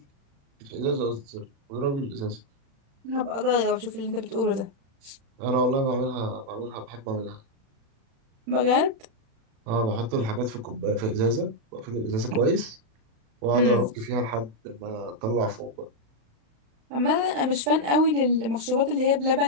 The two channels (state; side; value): late; left; 36 ms